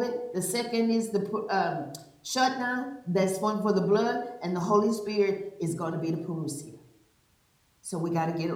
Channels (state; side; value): identical; both; correlation 1.00